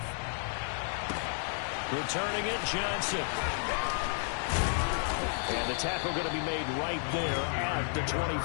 Returning it, Johnson. And the tackle going to be made right there at the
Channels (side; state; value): right; silent; 56 dB below the other